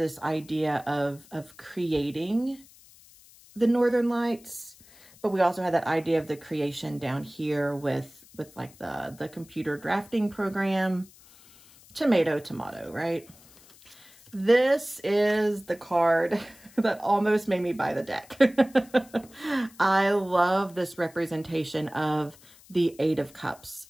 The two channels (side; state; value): left; noise; hiss, 25 dB below the sound